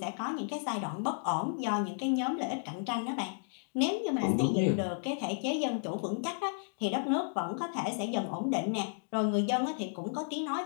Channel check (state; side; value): silent; right; digital silence